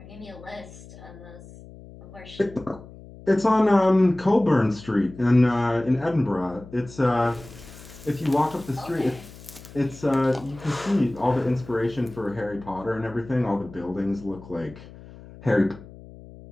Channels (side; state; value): left; noise; hum, 18 dB below the sound